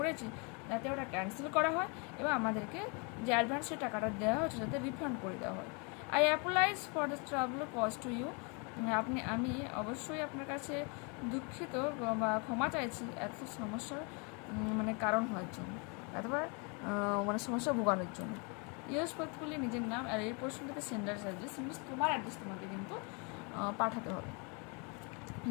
যাতে ওটা ক্যান্সেল করা হয় এবং আমাদেরকে যে অ্যাডভান্সের টাকাটা দেওয়া হচ্ছে যাতে রিফান্ড করে দেওয়া হয়। I apologise for the trouble cause to you. আমি অবশ্যই আপনার কাছে দুঃখিত বা ক্ষমা চাইছি এত সমস্যার কারণ হওয়ার জন্য, অথবা সমস্যা ভোগানোর জন্য। ইউজ পথগুলি নিজের নাম আর এই প্রশ্নটাতে সেন্ডার অ্যাড্রেস, মিনস তোমার অ্যাড্রেস তোমাকে কিন্তু পাঠাতে হবে,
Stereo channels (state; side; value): quieter; right; 33.3 dB